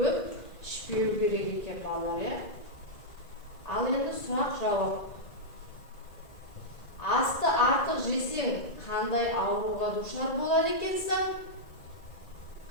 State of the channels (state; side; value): late; right; 1.9 ms